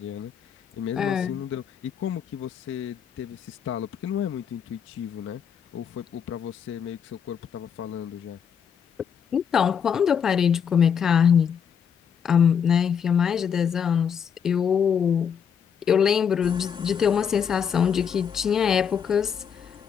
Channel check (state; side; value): quieter; right; 7.5 dB